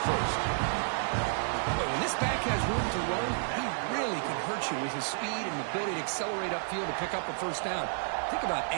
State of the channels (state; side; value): silent; left; 57 dB below the other